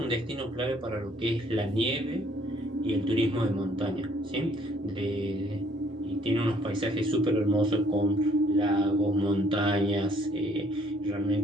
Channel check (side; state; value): both; normal; correlation 0.63